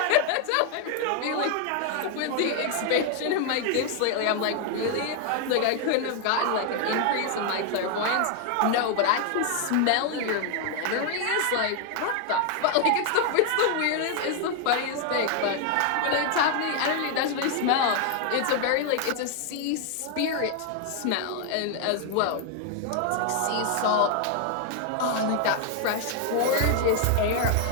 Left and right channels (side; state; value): both; different; correlation 0.00